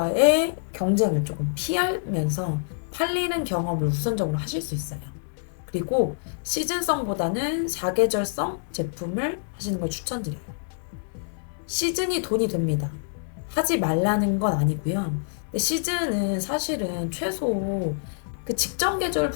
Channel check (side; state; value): right; silent; digital silence